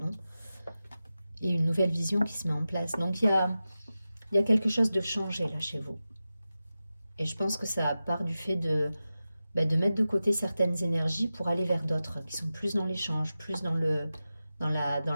et une nouvelle vision qui se met en place. Donc il y a quelque chose de changé là chez vous. Et je pense que ça part du fait de mettre de côté certaines énergies pour aller vers d'autres, qui sont plus dans l'échange, plus dans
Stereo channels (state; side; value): inverted; both; correlation -0.93